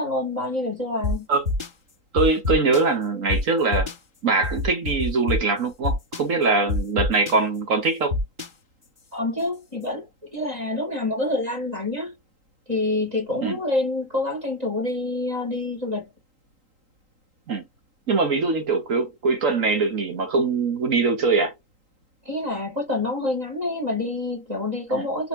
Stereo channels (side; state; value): left; late; 3.8 ms